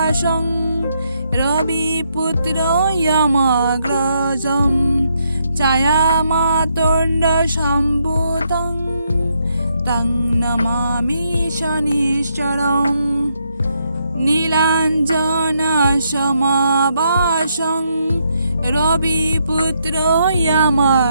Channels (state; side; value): inverted; both; correlation -0.77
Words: রবিপুত্র ইয়ামাগ্রজম ছায়ামাতণ্ড সম্ভূতং তং নমামি শনিশ্চরম। নীলাঞ্জনা সমাবাসং রবিপুত্র